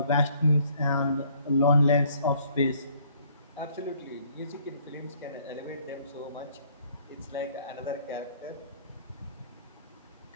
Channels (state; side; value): inverted; both; correlation -0.62